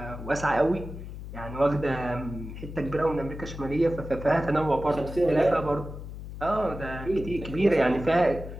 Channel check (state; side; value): noise; left; hum, 10 dB below the sound